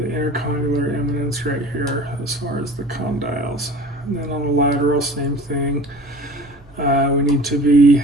intercondylar eminence right here as far as the condyles. And then on the lateral, same thing. We need to be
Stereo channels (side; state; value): both; normal; correlation 0.41